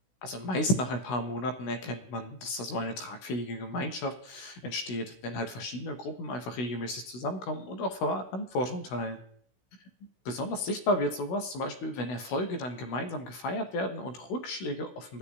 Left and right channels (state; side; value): late; right; 16 ms